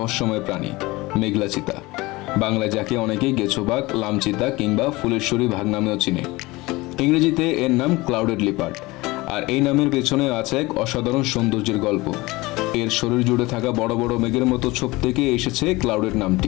প্রাণী, মেঘলা চিতা। বাংলায় যাকে অনেকেই গেছোবাঘ, লামচিতা কিংবা ফুলেশ্বরী বাঘ নামেও চিনে। ইংরেজিতে এর নাম ক্লাউডেড লিপার্ড। আর এই নামের পেছনে আছে এক অসাধারণ সৌন্দর্যের গল্প। এর শরীর জুড়ে থাকা বড় বড় মেঘের মতো ছোপ থেকে এসেছে ক্লাউডেড নামটি।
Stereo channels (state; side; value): quieter; right; 21.5 dB